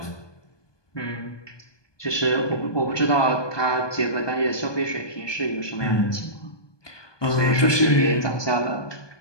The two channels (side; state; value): right; late; 1.2 ms